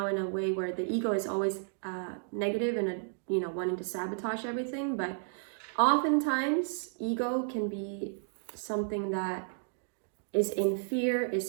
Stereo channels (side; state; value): left; silent; digital silence